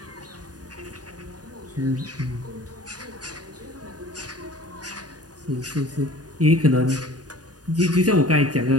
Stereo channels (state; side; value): late; left; 0.68 ms